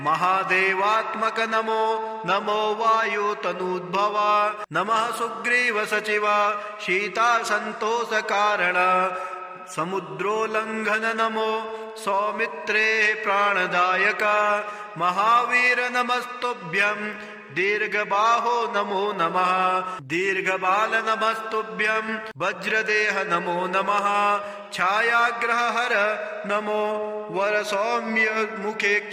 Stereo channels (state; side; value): identical; both; correlation 1.00